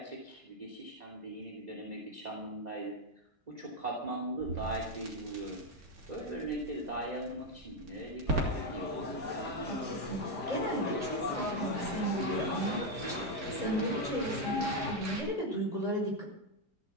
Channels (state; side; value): normal; both; correlation 0.05